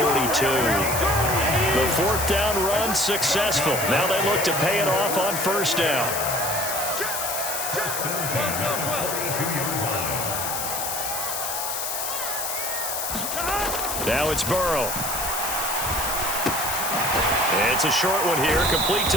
42. The 4th down run successful. Now they look to pay it off on 1st down. Now it's Burrow. It's a short one here, complete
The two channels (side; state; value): left; noise; hiss, 3 dB below the sound